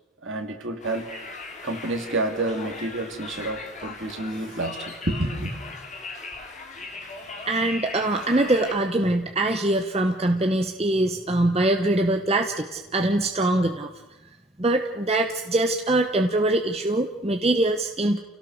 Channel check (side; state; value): both; normal; correlation 0.54